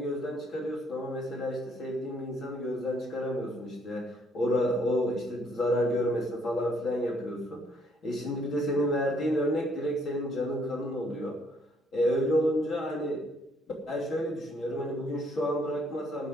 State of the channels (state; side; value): normal; both; correlation 0.67